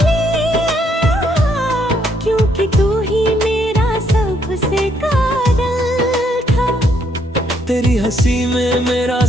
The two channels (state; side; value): normal; both; correlation 0.71